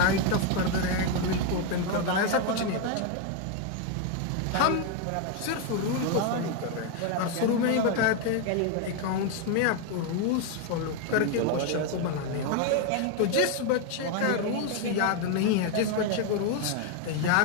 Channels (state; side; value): different; both; correlation 0.01